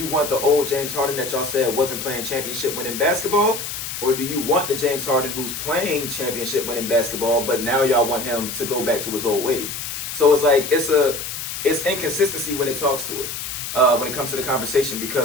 want the old James Harden that y'all said wasn't playing championship winning basketball? Or do you want the James Harden who's playing championship winning basketball, but now y'all want him to go back to his old ways? So it's like, it's inconsistency when it talks to it, when it comes to the conversation,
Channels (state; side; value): noise; left; hiss, 6 dB below the sound